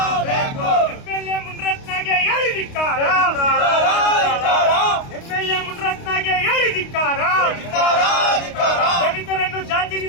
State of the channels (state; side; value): late; right; 29 ms